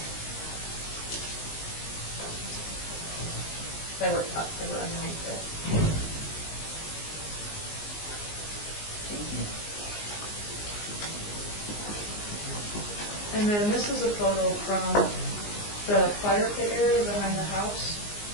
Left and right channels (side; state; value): right; late; 19 ms